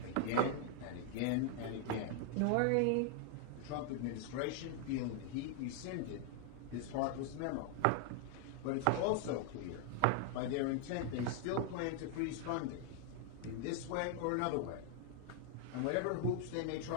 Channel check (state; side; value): different; both; correlation 0.00